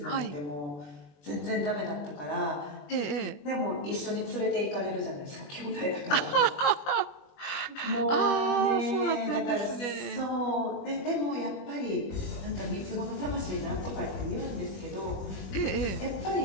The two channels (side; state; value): right; late; 21 ms